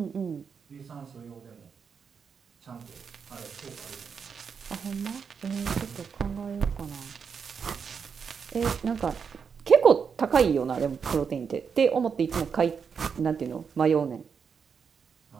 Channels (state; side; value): quieter; left; 6.3 dB